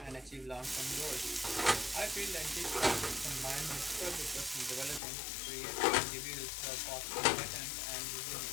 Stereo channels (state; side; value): drops out; right; at 5.0 s